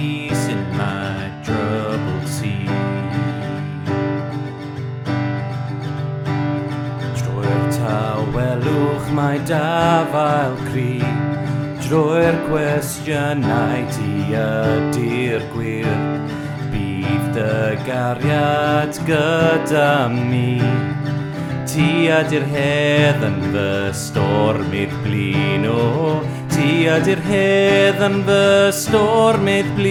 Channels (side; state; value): both; identical; correlation 1.00